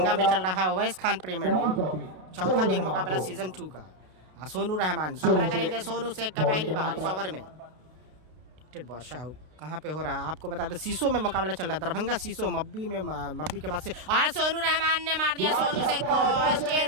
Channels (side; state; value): left; late; 32 ms